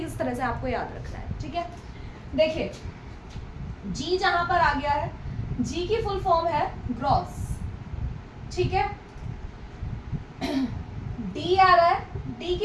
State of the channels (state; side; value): identical; both; correlation 1.00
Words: किस तरह से आपको याद रखना है। ठीक है, देखिए जी जहां पर आ गया है, जी की फुल फॉर्म है ग्रॉस। ठीक है, डी आ रहा है, डी